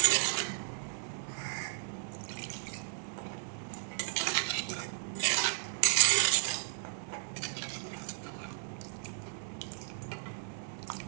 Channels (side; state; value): left; silent; digital silence